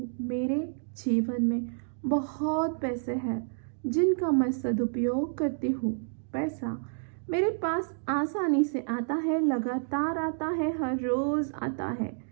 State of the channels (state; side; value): silent; left; digital silence